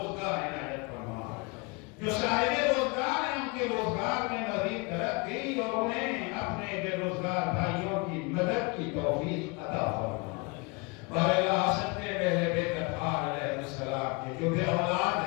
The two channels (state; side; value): quieter; right; 28.7 dB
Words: عنایت فرما، جو صاحب روزگار ہیں ان کے روزگار میں مزید ترقی اور انہیں اپنے بے روزگار بھائیوں کی مدد کی توفیق عطا فرما۔ بارے حسد کے پہلے بیت اطہار علیہ السلام کے جو بے اولاد